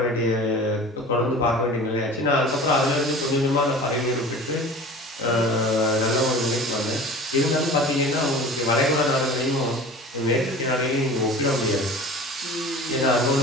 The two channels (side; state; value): both; normal; correlation 0.39